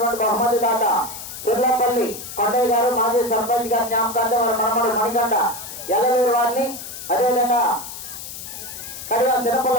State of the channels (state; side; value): noise; left; hiss, 11 dB below the sound